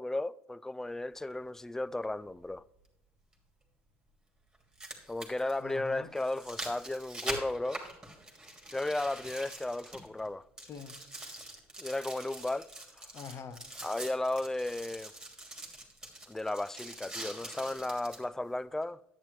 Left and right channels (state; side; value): normal; both; correlation 0.92